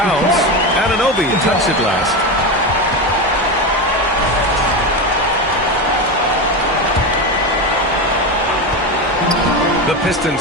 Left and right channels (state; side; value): normal; both; correlation 0.17